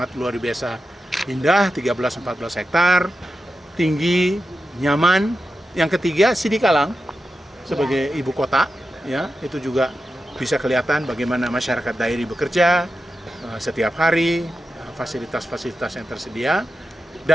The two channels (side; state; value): both; normal; correlation 0.91